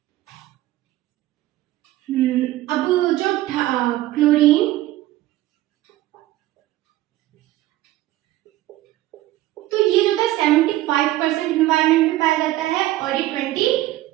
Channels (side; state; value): left; quieter; 15.9 dB